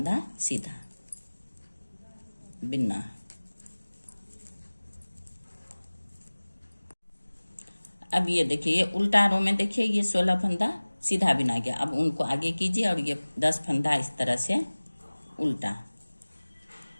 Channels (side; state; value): both; inverted; correlation -1.00